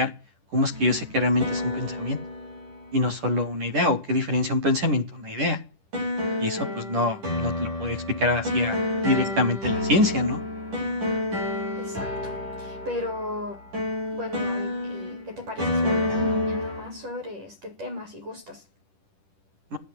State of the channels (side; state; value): left; late; 10 ms